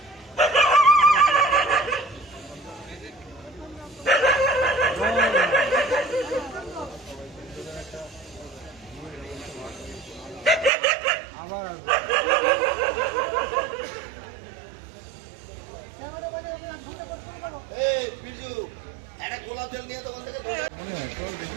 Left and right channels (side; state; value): left; drops out; at 10.7 s